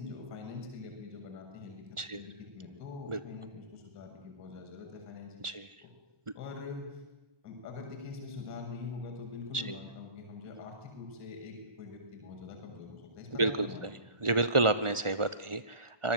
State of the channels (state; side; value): late; left; 1.4 ms